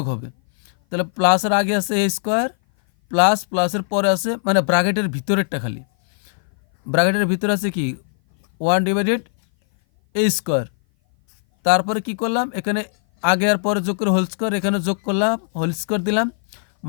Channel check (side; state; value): right; silent; 58 dB below the other